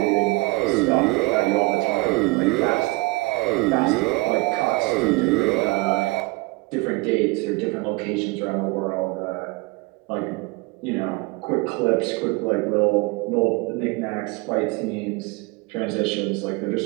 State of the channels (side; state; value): left; quieter; 24.6 dB